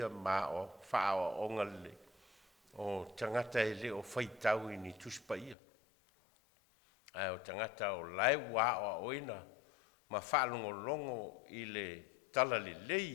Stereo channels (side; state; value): right; drops out; at 5.6 s